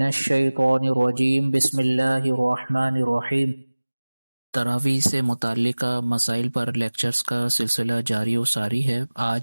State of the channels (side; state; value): both; inverted; correlation -1.00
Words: الشيطان الرجيم بسم الله الرحمن الرحيم۔ تراویح سے متعلقہ مسائل پر لیکچرز کا سلسلہ جاری و ساری ہے۔